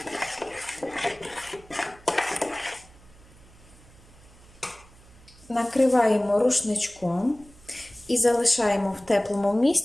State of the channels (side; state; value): right; noise; hum, 24 dB below the sound